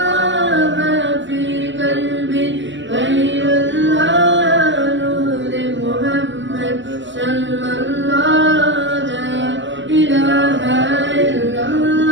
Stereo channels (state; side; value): late; left; 0.54 ms